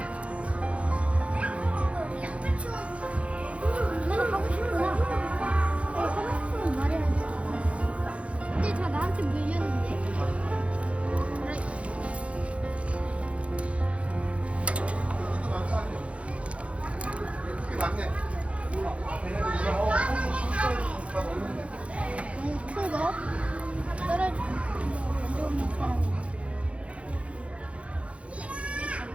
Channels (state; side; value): late; left; 0.062 ms